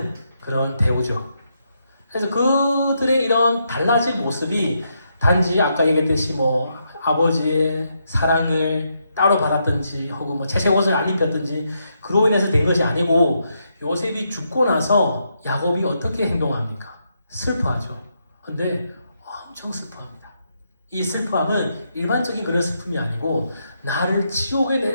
그런 대우죠. 그래서 그들의 이런 달라진 모습이 단지 아까 얘기했듯이 뭐 아버지의 사랑을 따로 받았든지 혹은 뭐 채색 옷을 안 입혔든지 그로 인해서 된 것이 아니고 요셉이 죽고 나서 야곱이 어떻게 행동합니까? 슬퍼하죠. 근데 엄청 슬퍼합니다. 이 슬퍼함은 일반적인 그런 슬픔이 아니고 나를 지옥에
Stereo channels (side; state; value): both; inverted; correlation -0.80